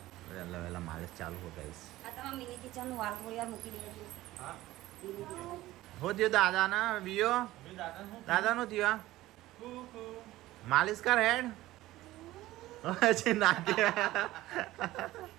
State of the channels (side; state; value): left; quieter; 16.6 dB